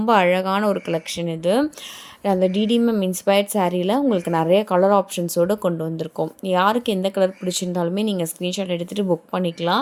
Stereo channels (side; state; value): both; identical; correlation 1.00